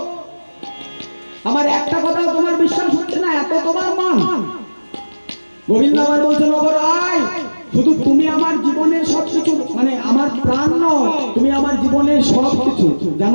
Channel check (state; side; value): inverted; both; correlation -1.00